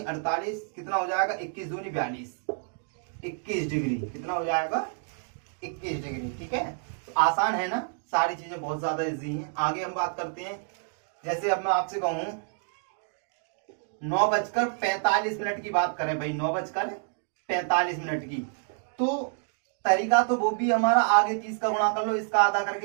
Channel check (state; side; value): silent; left; 59 dB below the other